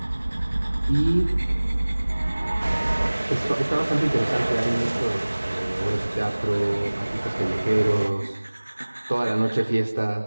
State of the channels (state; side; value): inverted; both; correlation -1.00